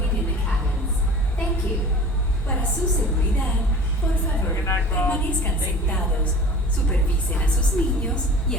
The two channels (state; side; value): normal; both; correlation 0.41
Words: in the cabins. Thank you. Para su seguridad, por favor, permanezcan sentados, supervisen a sus niños y